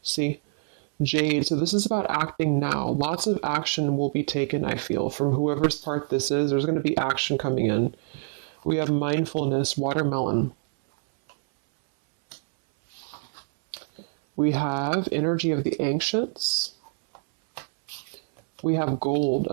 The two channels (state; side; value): silent; left; 61 dB below the other